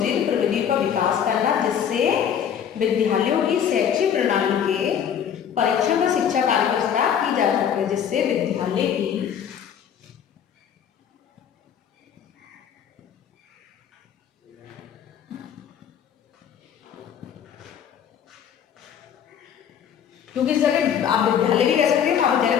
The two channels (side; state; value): right; quieter; 8.5 dB